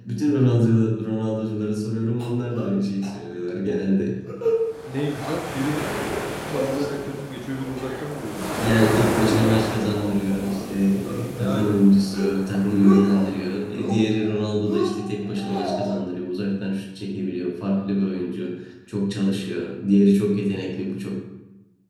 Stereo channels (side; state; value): both; identical; correlation 1.00